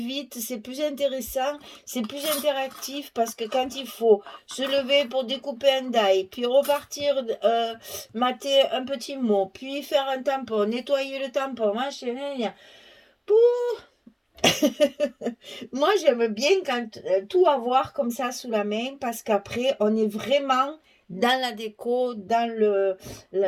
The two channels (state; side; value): identical; both; correlation 1.00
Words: c'est plus intéressant, c'est plus interactif parce que quand il faut se lever pour découper un die, puis repartir mater un petit mot, puis faire un tampon, nettoyer le tampon, machin, moi j'aime bien quand tout avoir comme ça sous la main parce qu'après on est vraiment dans la déco, dans